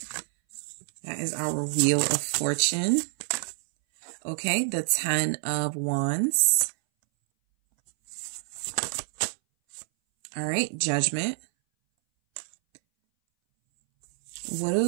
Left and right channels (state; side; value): silent; left; 60 dB below the other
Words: That is our Wheel of Fortune. Okay, the 10 of Wands. All right, Judgment. What